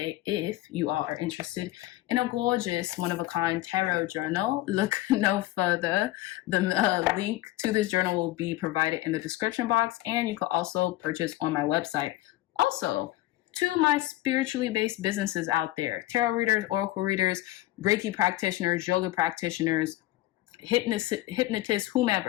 If you all are interested in a gorgeous, one-of-a-kind tarot journal, look no further. The link to this journal will be provided in the description box, and you can also purchase on my website. Also, to my spiritually based businesses out there, tarot readers, oracle readers, Reiki practitioners, yoga practitioners, hypnotists,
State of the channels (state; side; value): quieter; right; 16.5 dB